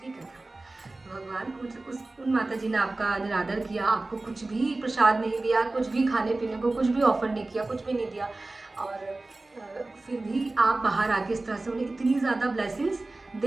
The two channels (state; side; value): quieter; left; 3.1 dB